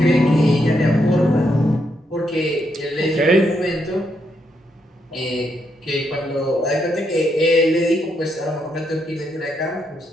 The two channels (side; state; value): both; normal; correlation 0.78